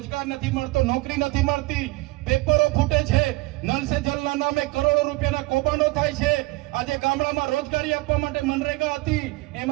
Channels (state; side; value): quieter; left; 21.9 dB